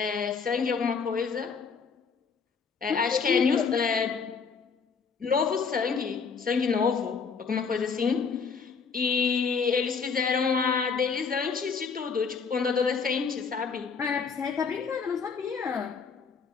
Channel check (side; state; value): right; quieter; 5.6 dB